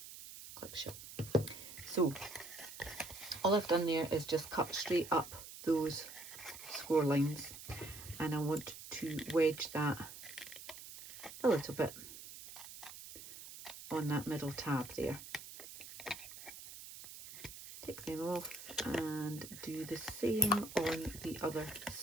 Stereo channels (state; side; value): noise; right; hiss, 13 dB below the sound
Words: Clip shut. So all I've done there is just cut straight up those score lines, and I want to wedge that a little bit on that middle tab there. Take them off and do the same on the other